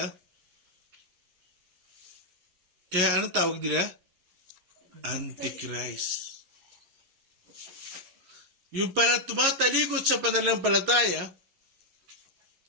kaya anong tawag nila? Antichrist. Yung pala tumatalikod sa pananampalataya,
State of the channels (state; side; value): late; left; 11 ms